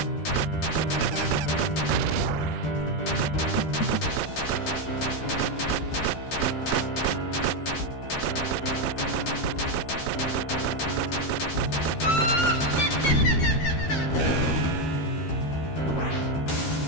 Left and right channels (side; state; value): right; late; 13 ms